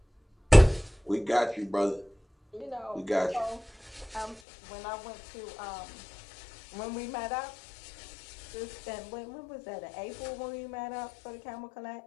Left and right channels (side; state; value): right; drops out; at 4.4 s